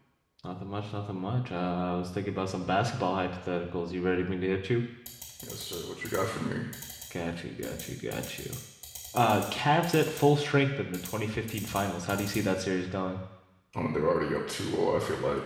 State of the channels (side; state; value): both; identical; correlation 1.00